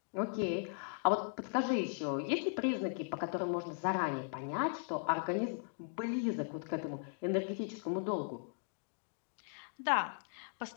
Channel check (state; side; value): silent; right; digital silence